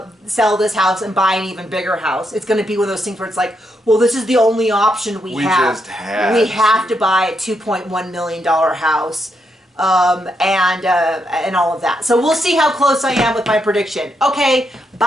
this house and buy an even bigger house. It's going to be one of those things where it's like, well, this is the only option we have. We have to buy a $2.1 million house. And all of that. So we'll see how close I am with my prediction. Okay,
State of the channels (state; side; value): normal; both; correlation 0.80